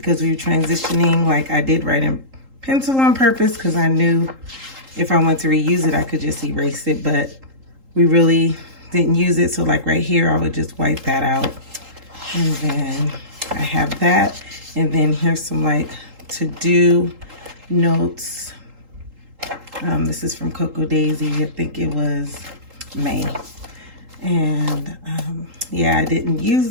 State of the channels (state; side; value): late; left; 3.8 ms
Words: we were transitioning. Like, I did write in pencil on purpose because I knew if I wanted to reuse it, I could just erase it, but we really didn't use it. So like right here, I would just wipe that out. And then I have that. And then here's some like to-do notes. This is from Coco Daisy. I think it was May. And yeah, I didn't use